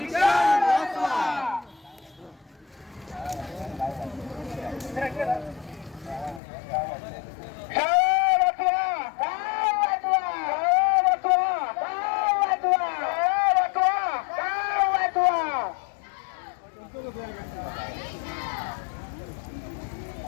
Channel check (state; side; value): drops out; right; at 6.4 s